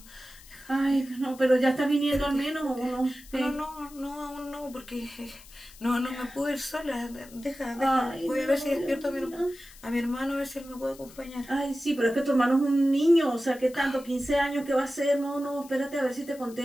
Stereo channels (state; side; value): noise; left; hiss, 21 dB below the sound